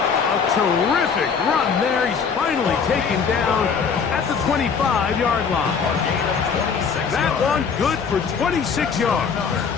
A terrific run there. He's finally taken down at the 25-yard line. That one good for 26 yards.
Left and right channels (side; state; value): right; quieter; 6.1 dB